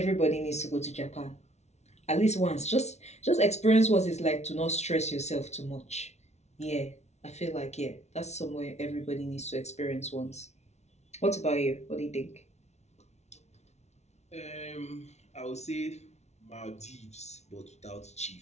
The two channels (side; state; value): right; late; 0.32 ms